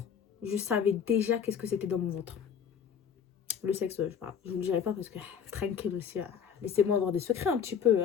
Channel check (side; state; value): right; quieter; 7.5 dB